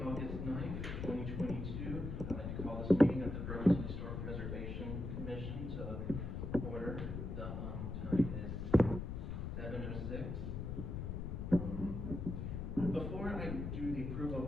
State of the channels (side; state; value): left; noise; rumble, 4 dB below the sound